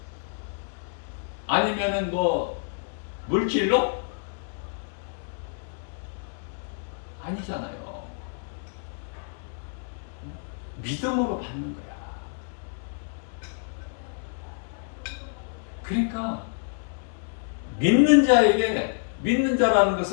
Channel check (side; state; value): right; silent; digital silence